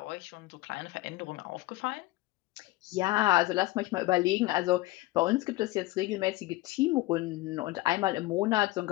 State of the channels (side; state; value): right; quieter; 18.8 dB